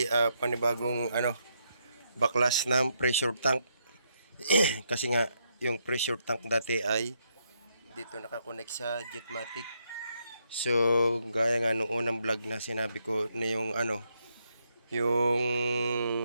panibagong baklas ng pressure tank. Kasi nga yung pressure tank dati ay dito nakakonect sa Jetmatic. So gaya nga nung unang vlog na sinabi ko na yung yung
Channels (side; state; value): both; inverted; correlation -0.78